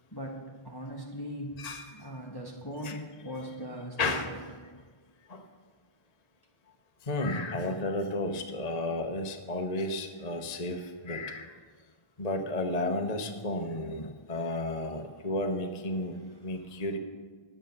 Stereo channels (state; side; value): late; right; 1.8 ms